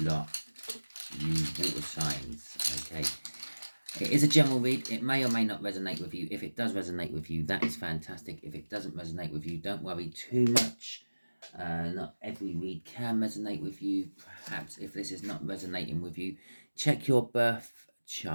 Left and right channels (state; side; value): inverted; both; correlation -1.00